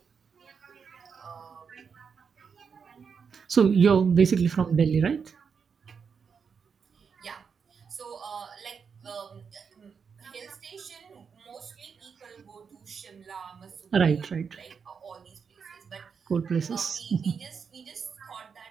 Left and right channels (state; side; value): quieter; left; 6.2 dB